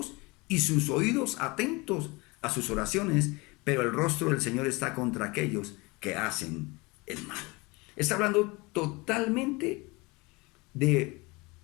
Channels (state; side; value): quieter; right; 25.3 dB